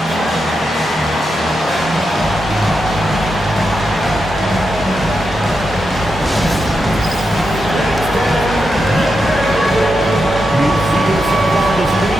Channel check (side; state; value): both; normal; correlation 0.86